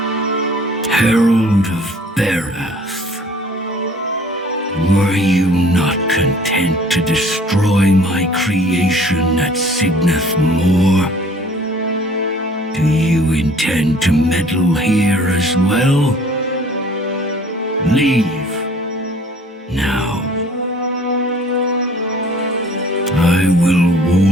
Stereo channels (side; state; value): both; normal; correlation 0.53